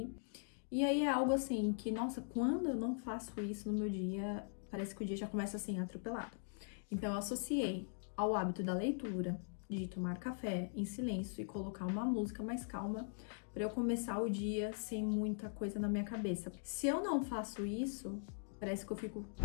E aí é algo assim que, nossa, quando eu não faço isso no meu dia, parece que o dia já começa assim, atropelado. Então eu associei ao hábito da leitura, de tomar café em silêncio e colocar uma música mais calma para eu começar o dia sem muita coisa na minha cabeça. Se eu não faço isso, parece que eu fico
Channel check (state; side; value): silent; right; digital silence